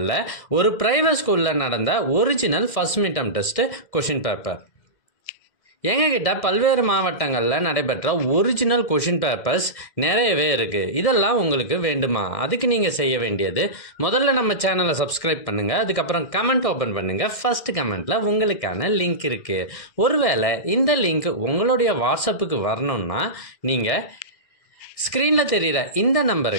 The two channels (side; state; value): right; late; 1.6 ms